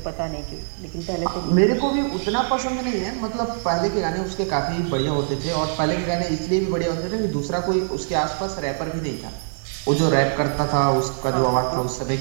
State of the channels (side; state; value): left; silent; digital silence